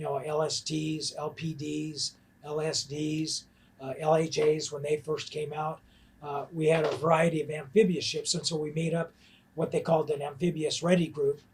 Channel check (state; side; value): identical; both; correlation 1.00